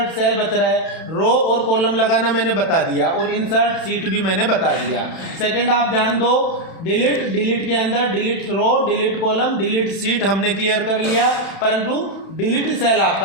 सेल बच रहा है, रो और कॉलम लगाना मैंने बता दिया, और इंसर्ट सीट भी मैंने बता दिया। सेकंड आप ध्यान दो, डिलीट के अंदर डिलीट रो, डिलीट कॉलम, डिलीट सीट हमने क्लियर कर लिया, परंतु डिलीट सेल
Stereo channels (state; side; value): late; right; 31 ms